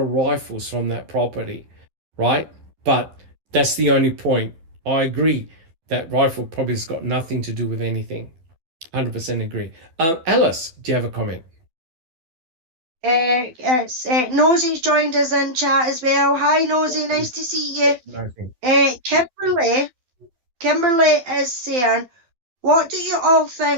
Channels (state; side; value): late; left; 12 ms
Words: rifles from that property, right? But that's the only point. I agree that rifle probably has got nothing to do with anything. 100% agree. Alice, do you have a comment? Nosey's joined us in chat as well. Hi, Nosey. Nice to see you. Kimberly is saying, what do you all